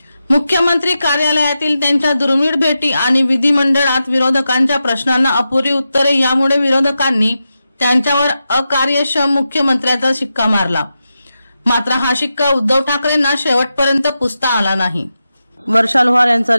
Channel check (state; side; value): inverted; both; correlation -0.90